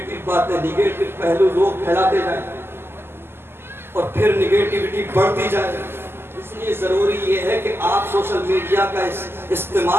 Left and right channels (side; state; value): left; late; 0.11 ms